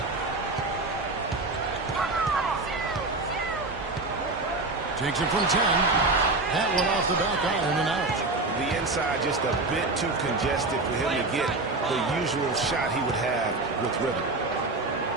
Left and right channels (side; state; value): left; quieter; 3.2 dB